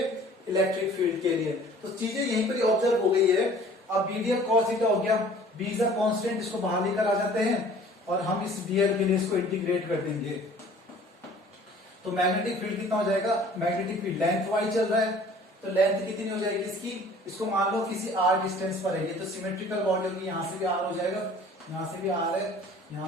इलेक्ट्रिक फील्ड के लिए। तो चीजें यहीं पर ऑब्जर्व हो गई है। अब बीडीएल cos थीटा हो गया, बी इज अ कांस्टेंट, इसको बाहर लेकर आ जाते हैं और हम इस डीएल के लिए इसको इंटीग्रेट कर देंगे। तो मैग्नेटिक फील्ड कितना हो जाएगा, मैग्नेटिक फील्ड लेंथ वाइज चल रहा है तो लेंथ कितनी हो जाएगी इसकी, इसको मान लो किसी आर डिस्टेंस पर है ये, तो सिमेट्रिकल बॉडी होगी, यहाँ से भी आर हो जाएगा, यहाँ से भी आर है,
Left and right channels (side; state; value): both; normal; correlation 0.50